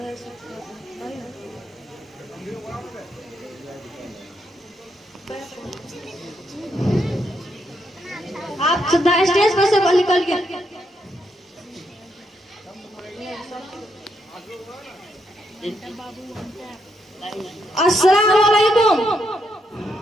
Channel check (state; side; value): normal; both; correlation 0.79